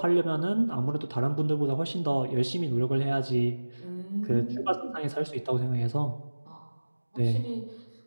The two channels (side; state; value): both; inverted; correlation -1.00